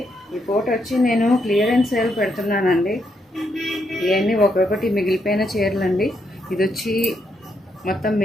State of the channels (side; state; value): both; normal; correlation 0.78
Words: ఈ photo వచ్చి నేను క్లియరెన్స్ సేల్ పెడుతున్నానండి. ఇవన్నీ ఒక్కొక్కటి మిగిలిపోయిన చీరలు అండి. ఇది వచ్చి మొత్తం